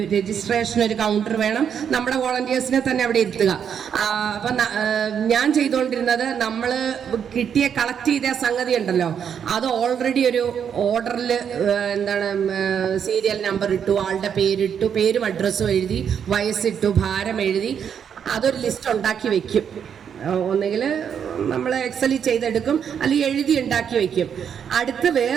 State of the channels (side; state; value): left; quieter; 7.9 dB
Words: കൗണ്ടർ വേണം. നമ്മുടെ വോളണ്ടിയേഴ്സിനെ തന്നെ അവിടെ ഇരുത്തുക. അപ്പം ഞാൻ ചെയ്തുകൊണ്ടിരുന്നത്, നമ്മൾ കളക്ട് ചെയ്ത സംഗതി ഉണ്ടല്ലോ, അത് ഓൾറെഡി ഒരു ഓർഡറിൽ സീരിയൽ നമ്പർ ഇട്ടു, ആളുടെ പേരിട്ടു, പേരും അഡ്രസ്സും എഴുതി, വയസ്സിട്ടു, ഭാരം എഴുതി, അതൊരു ലിസ്റ്റ് ഉണ്ടാക്കി വെക്കും. ഒന്നുകിൽ നമ്മൾ എക്സലിൽ ചെയ്തെടുക്കും, അല്ലെങ്കിൽ എഴുതി ഉണ്ടാക്കി വെക്കും. അടുത്ത്